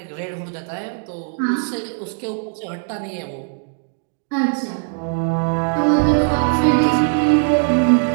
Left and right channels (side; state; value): left; silent; 57 dB below the other